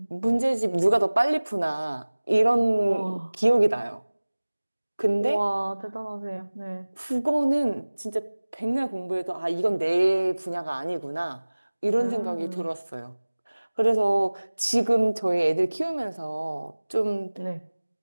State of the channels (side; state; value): both; inverted; correlation -1.00